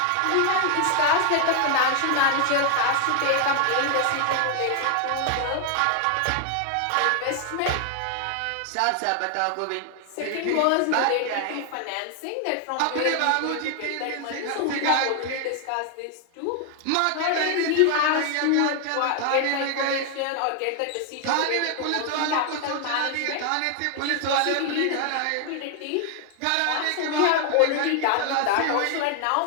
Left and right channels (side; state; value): both; different; correlation 0.00